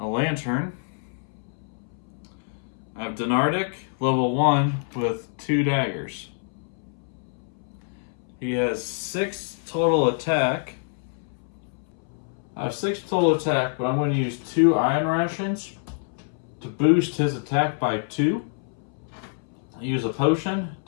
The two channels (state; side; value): silent; right; 61 dB below the other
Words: Lantern. I have Donardic, level 1, with 2 daggers. He has 6 total attack. I have 6 total attack, but I'm going to use 2 Iron Rations to boost his attack by 2. I use a potion